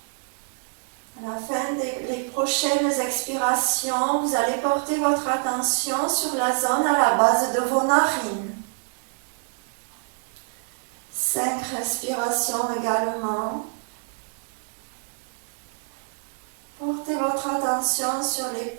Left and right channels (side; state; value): left; silent; 61 dB below the other